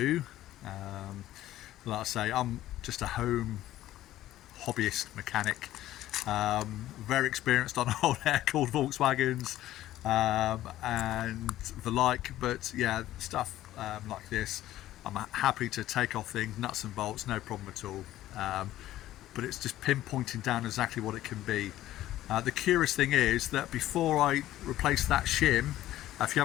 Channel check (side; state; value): right; quieter; 14.2 dB